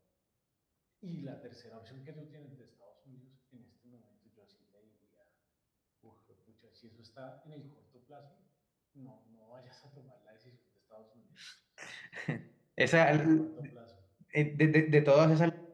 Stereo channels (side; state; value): both; identical; correlation 1.00